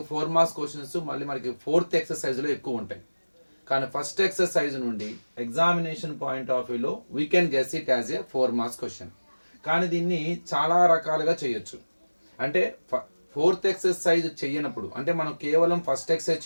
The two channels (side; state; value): both; inverted; correlation -1.00